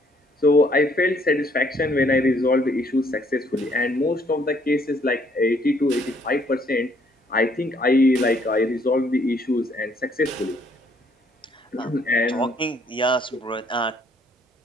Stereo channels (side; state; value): both; normal; correlation 0.66